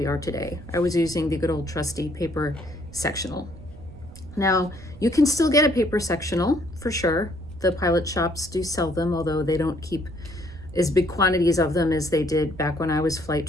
are today. I was using the good old trusty paper sectional. Now, you can still get a paper sectional for sure. The pilot shops do sell them, although they don't keep as big quantities of them as they did back when I was flight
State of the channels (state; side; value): noise; right; rumble, 18 dB below the sound